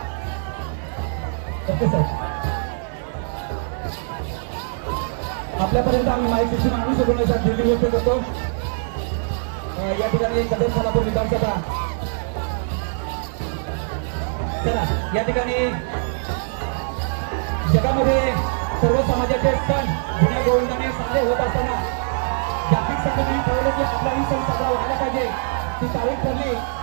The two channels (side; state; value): left; silent; 64 dB below the other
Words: Okay sir. आपल्यापर्यंत आम्ही माईक सिस्टीम आणू शकतो नाही सर, दिल्ली गोष्ट करतो. या ठिकाणी सदर सोलापूर विधानसभा. चला या ठिकाणी जगामध्ये सर्व समाजाचे सण जुन्या गोविंदाने साजरे होत असताना जागतिक संघटनेने ठरवलं की आपलाही सण साजरा व्हायला पाहिजे. ती तारीख ठरली